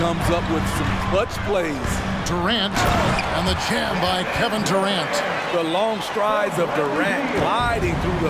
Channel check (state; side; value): identical; both; correlation 1.00